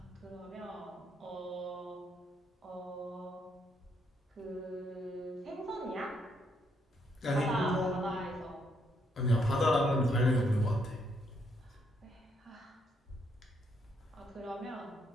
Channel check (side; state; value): both; normal; correlation 0.74